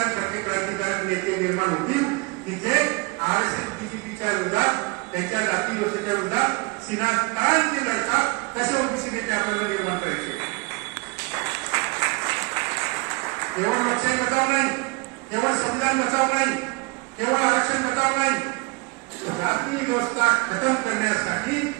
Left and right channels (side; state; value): left; quieter; 27.8 dB